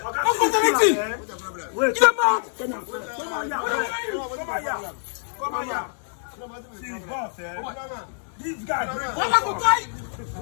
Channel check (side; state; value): right; silent; digital silence